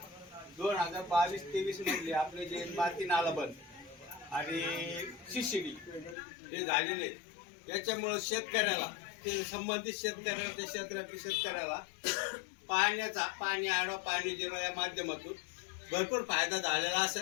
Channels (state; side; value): drops out; right; at 6.2 s